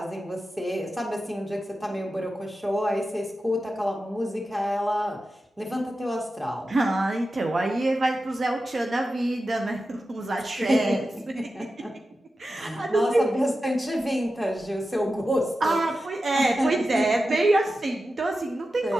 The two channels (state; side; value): normal; both; correlation 0.92